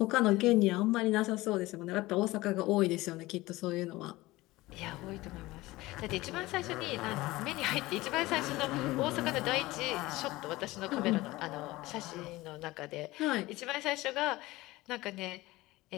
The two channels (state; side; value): quieter; right; 19.3 dB